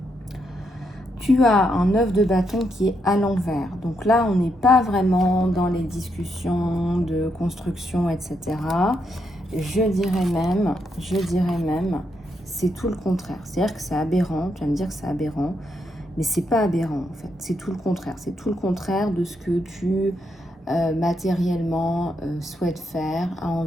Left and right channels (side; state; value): both; normal; correlation 0.79